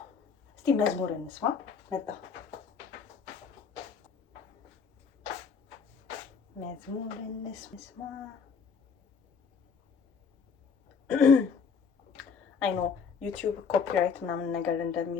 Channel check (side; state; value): right; quieter; 5.9 dB